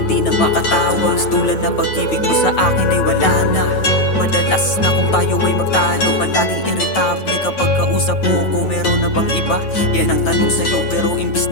na makatawa. Tulan na pag-ibig mo sa akin ay wala na. Madalas na kung tayo ay magtalo, palaging irritable kapag kausap mo ko. Meron na bang iba? Yan ang tanong sa'yo, pero imbis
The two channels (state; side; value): late; right; 9.2 ms